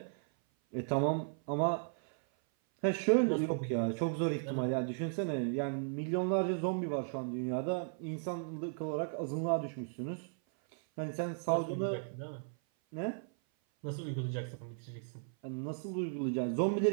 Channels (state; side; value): silent; left; 54 dB below the other